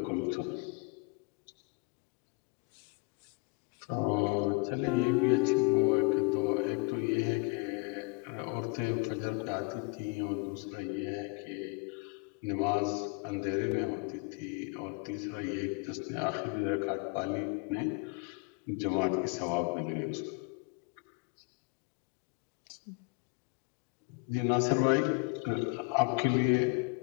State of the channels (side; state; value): right; quieter; 31.3 dB